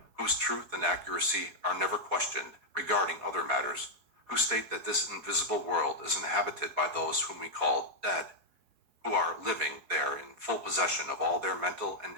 whose truth and accuracy are never questioned regarding other matters, who state that this invisible world is inhabited by those whom we call dead, who are living there in full possession of all their mental and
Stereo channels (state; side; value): late; left; 4.7 ms